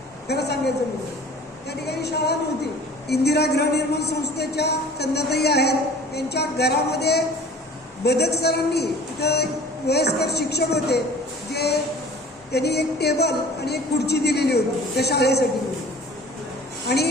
खरं सांगायचं म्हणजे त्या ठिकाणी शाळा नव्हती. इंदिरा गृहनिर्माण संस्थेच्या चंदाताई आहेत, त्यांच्या घरामध्ये बदक सरांनी तिथं वयस्कर शिक्षक होते, जे त्यांनी एक टेबल आणि एक खुर्ची दिलेली होती त्या शाळेसाठी. आणि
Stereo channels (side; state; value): both; normal; correlation 0.45